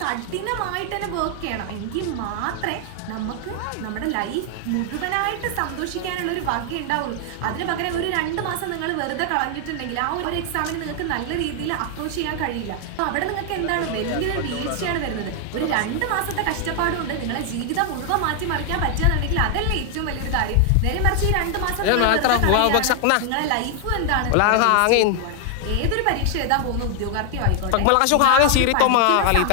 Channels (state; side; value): different; both; correlation 0.00